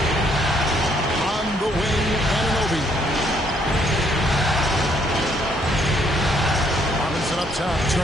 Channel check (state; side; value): normal; both; correlation 0.68